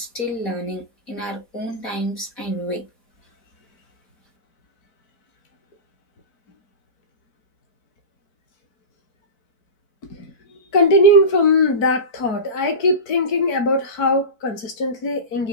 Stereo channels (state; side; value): late; right; 4.2 ms